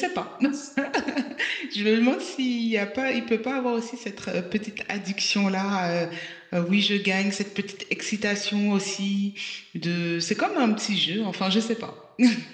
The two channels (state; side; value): identical; both; correlation 1.00